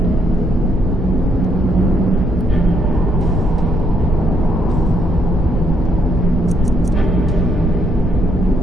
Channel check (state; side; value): normal; both; correlation 0.73